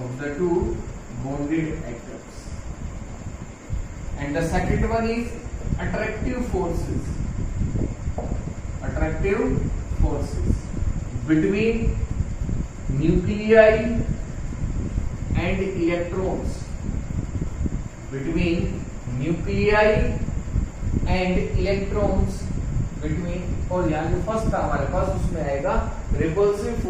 And the second one is attractive forces between nuclei and electrons, और यहाँ जो first था हमारे पास उसमें आएगा repulsive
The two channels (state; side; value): identical; both; correlation 1.00